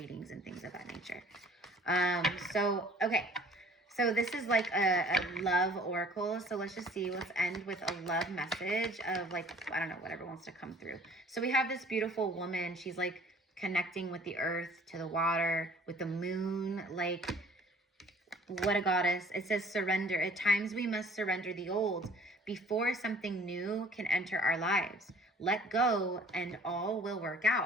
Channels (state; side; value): normal; both; correlation 0.52